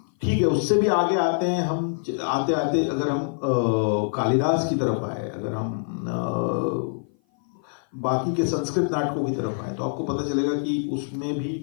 ठीक है, उससे भी आगे आते हैं हम, आते आते अगर हम कालिदास की तरफ आए, अगर हम बाकी के संस्कृत नाटकों की तरफ आए, तो आपको पता चलेगा कि उसमें भी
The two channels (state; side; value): silent; right; 56 dB below the other